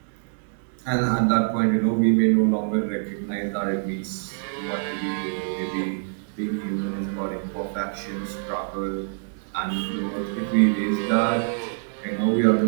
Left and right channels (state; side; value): silent; left; digital silence